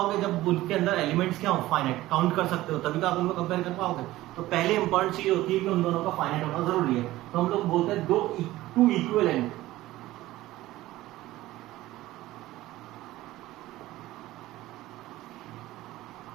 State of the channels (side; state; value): left; quieter; 16.6 dB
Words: जब उनके अंदर एलिमेंट्स क्या हो, फाइनाइट, काउंट कर सकते हो, तभी तो आप उनको कंपेयर कर पाओगे। तो पहले इंपॉर्टेंट चीज होती है कि उन दोनों का फाइनाइट होना जरूरी है। तो हम लोग बोलते हैं two equivalent